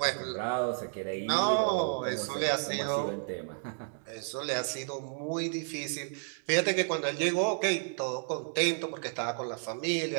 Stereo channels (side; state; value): left; silent; 57 dB below the other